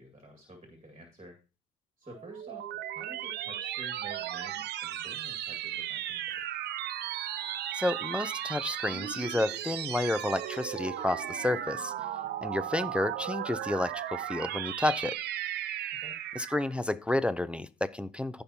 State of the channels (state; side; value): normal; both; correlation 0.60